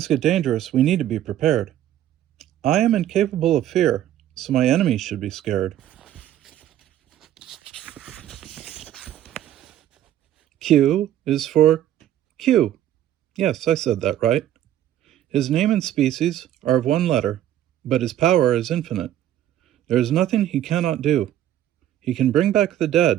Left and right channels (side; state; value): left; quieter; 12.1 dB